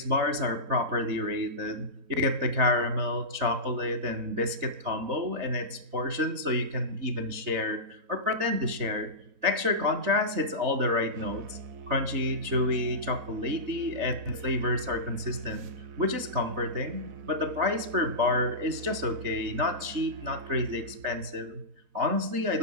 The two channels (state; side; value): late; left; 4.0 ms